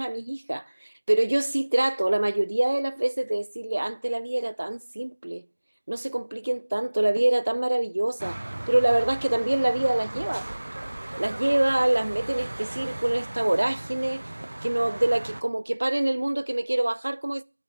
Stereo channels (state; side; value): inverted; both; correlation -1.00